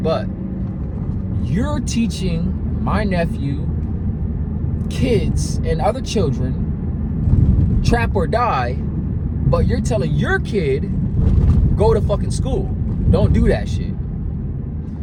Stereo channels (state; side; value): identical; both; correlation 1.00